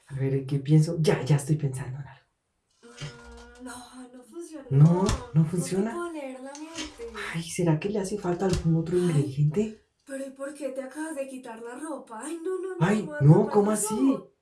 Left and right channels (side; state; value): both; identical; correlation 1.00